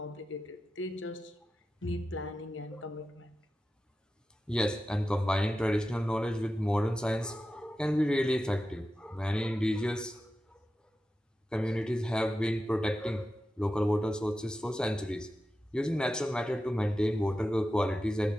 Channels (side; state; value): both; normal; correlation 0.92